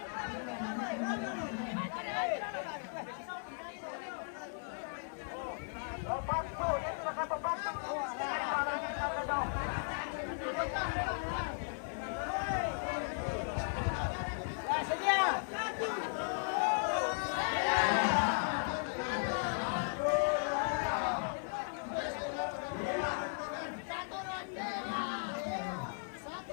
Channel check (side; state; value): right; silent; digital silence